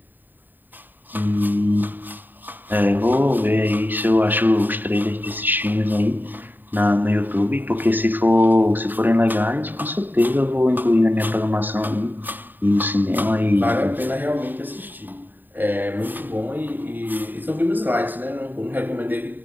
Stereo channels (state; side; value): late; left; 0.090 ms